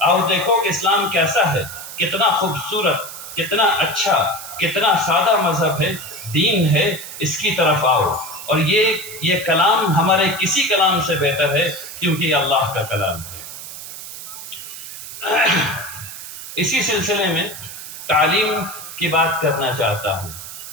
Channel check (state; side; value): noise; right; hiss, 11 dB below the sound